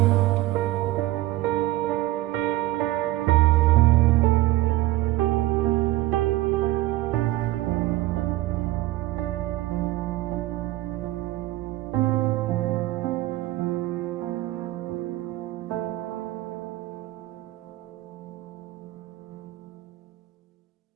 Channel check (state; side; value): quieter; left; 16.9 dB